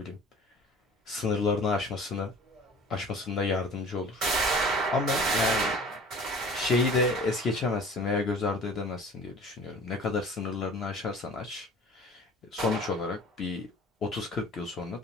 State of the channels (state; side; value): normal; both; correlation 0.45